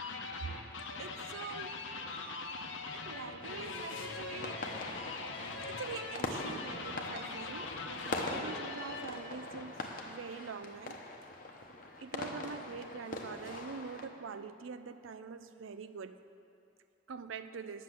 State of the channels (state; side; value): normal; both; correlation -0.04